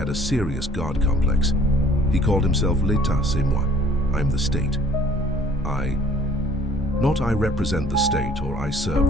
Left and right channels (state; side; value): normal; both; correlation 0.55